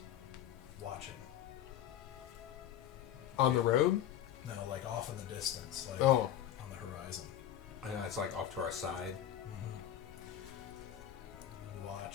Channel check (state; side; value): quieter; right; 10.9 dB